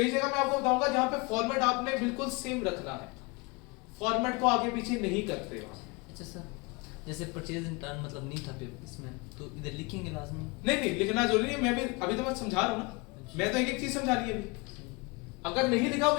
जगह मैं आपको बताऊंगा जहां पे फॉर्मेट आपने बिल्कुल सेम रखना है, फॉर्मेट को आगे पीछे नहीं करते वहां। अच्छा सर, जैसे परचेज इन टर्न मतलब नहीं था पेपर इसमें, तो इधर लिखेंगे लाजमी? नहीं लिखना जरूरी नहीं है, मैं भी अभी तो मैं समझा रहा हूँ ना, मैं तो एक एक चीज समझा रही है अभी। अगर नहीं लिखा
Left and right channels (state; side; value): quieter; right; 27.4 dB